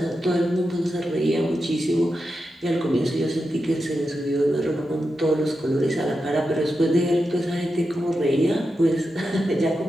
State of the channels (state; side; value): normal; both; correlation 0.89